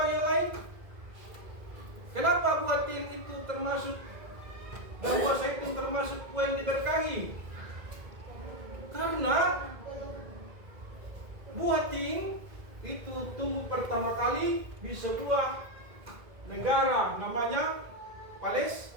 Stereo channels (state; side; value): late; left; 2.0 ms